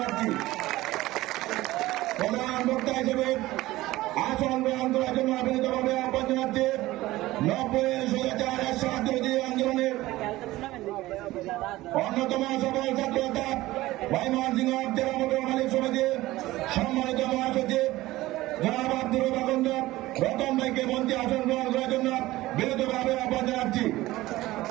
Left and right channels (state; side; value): quieter; left; 17.5 dB